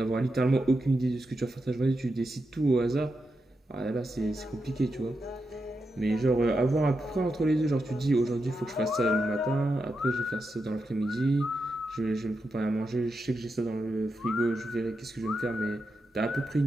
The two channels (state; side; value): normal; both; correlation 0.87